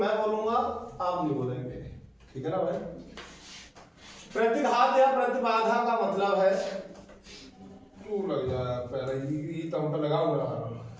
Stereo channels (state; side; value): identical; both; correlation 1.00